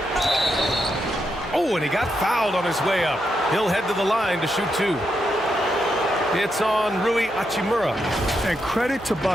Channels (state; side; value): noise; right; hum, 22 dB below the sound